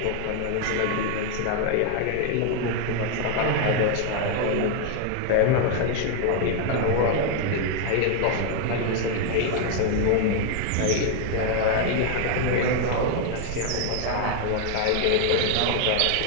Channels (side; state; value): both; different; correlation 0.00